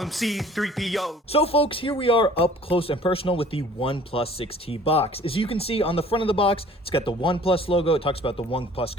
him C3PO. So folks, here we are up close and personal with the OnePlus 6T box. As you can see on the front of the box, it's got the OnePlus logo. It talks about the OnePlus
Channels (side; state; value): both; normal; correlation 0.51